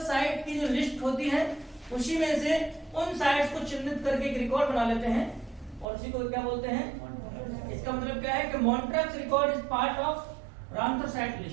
साइट की जो लिस्ट होती है उसी में से उन साइट्स को चिन्हित करके एक रिकॉर्ड बना लेते हैं, और उसी को क्या बोलते हैं? इसका मतलब क्या है कि Montreux record is part of Ramsar site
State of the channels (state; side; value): drops out; left; at 5.9 s